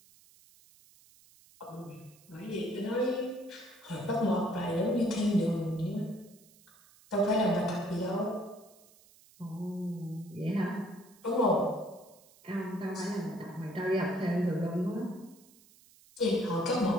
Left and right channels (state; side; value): noise; right; hiss, 26 dB below the sound